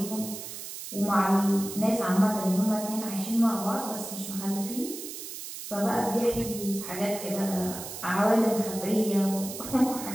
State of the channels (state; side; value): noise; right; hiss, 9 dB below the sound